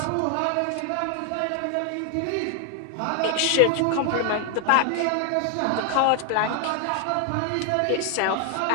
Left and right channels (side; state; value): both; different; correlation 0.00